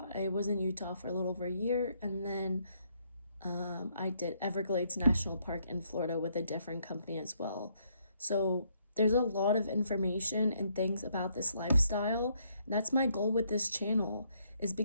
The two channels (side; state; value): both; inverted; correlation -0.71